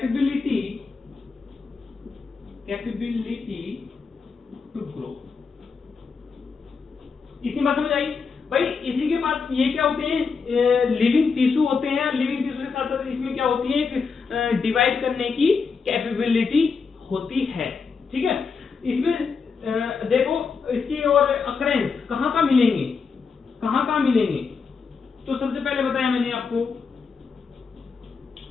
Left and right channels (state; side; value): quieter; right; 5.2 dB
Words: to grow. इतनी बात समझ आई भाई। इसी के बाद ये क्या होते हैं? लिविंग टिश्यू होते हैं। लिविंग टिश्यू के साथ साथ इसमें क्या होती है? एक डिवाइड करने की कैपेबिलिटी होती है। ठीक है, इसमें देखो इसकी और अकरेंस कहां कहां मिलेंगे, तो सबसे पहले बताया मैंने आपको,